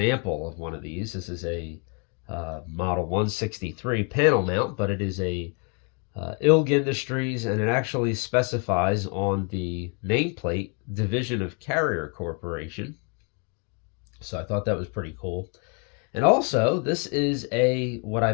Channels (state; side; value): quieter; right; 36.4 dB